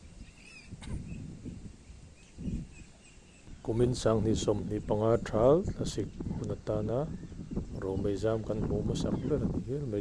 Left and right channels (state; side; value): identical; both; correlation 1.00